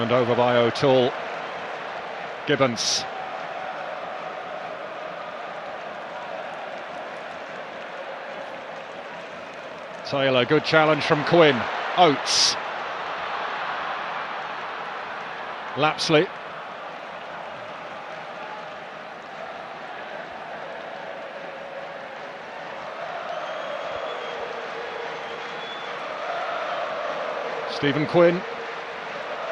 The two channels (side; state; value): both; identical; correlation 1.00